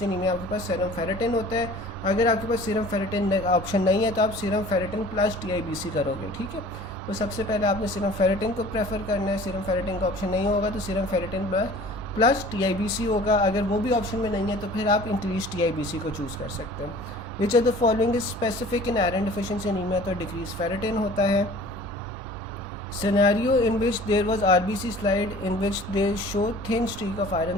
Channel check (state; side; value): normal; both; correlation 0.46